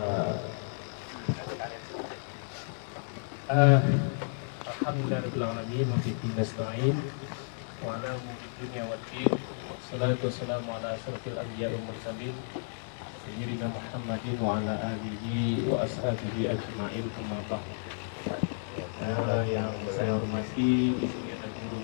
Alhamdulillahirabbil alamin wa bihi nasta'in wa ala umuri dunya waddin. Salatu wassalamu ala asyrafil anbiya'i wal mursalin sayyidina Muhammadin wa ala alihi wa ashabihi ajma'in. Amma ba'd. Yang saya hormati, di sini ada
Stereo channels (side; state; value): right; silent; digital silence